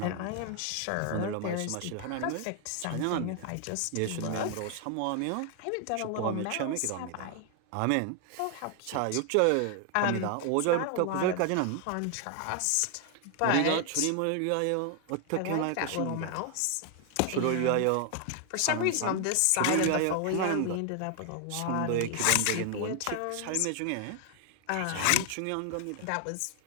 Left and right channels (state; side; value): different; both; correlation 0.00